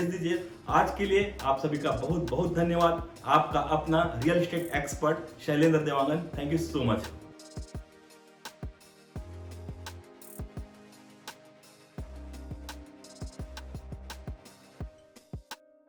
दीजिए। आज के लिए आप सभी का बहुत बहुत धन्यवाद। आपका अपना real estate expert Shailendra Dewangan. Thank you so much.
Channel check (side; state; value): both; identical; correlation 1.00